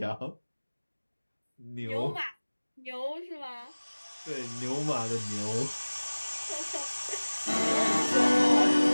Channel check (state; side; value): inverted; both; correlation -1.00